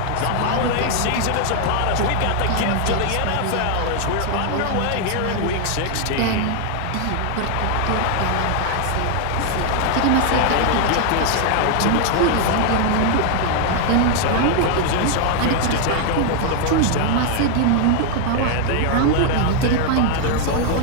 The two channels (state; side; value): different; both; correlation 0.00